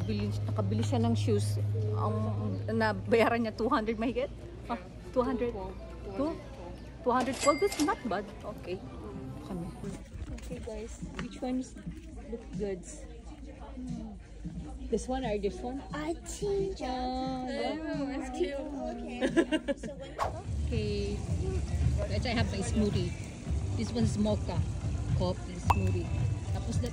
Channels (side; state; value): both; identical; correlation 1.00